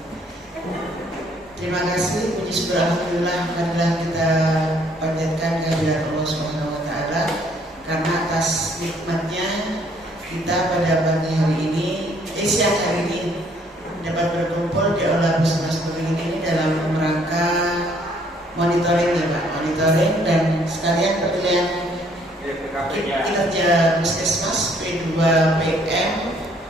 Terima kasih, puji syukur alhamdulillah marilah kita panjatkan kehadirat Allah Subhanahu wa taala karena atas nikmatnya kita pada pagi hari ini, siang hari ini dapat berkumpul di aula Puskesmas Sumberwingin ini dalam rangka monitoring ya Pak, monitoring dan sekalian pemilihan kinerja Puskesmas P2 PM,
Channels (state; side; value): normal; both; correlation 0.64